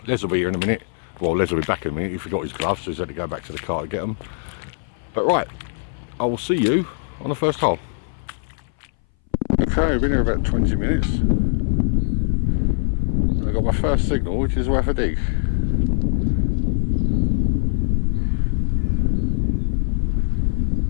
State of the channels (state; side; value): silent; right; 61 dB below the other